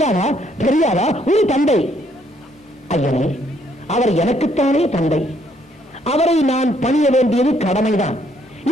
தெரியாதா? ஒரு தந்தை. ஐயனே, அவர் எனக்குத்தானே தந்தை, அவரை நான் பணிய வேண்டியது கடமைதான்.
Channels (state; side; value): normal; both; correlation 0.69